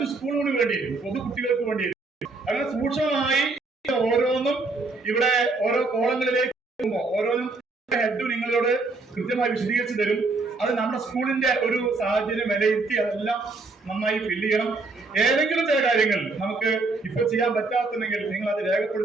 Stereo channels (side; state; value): left; quieter; 3.6 dB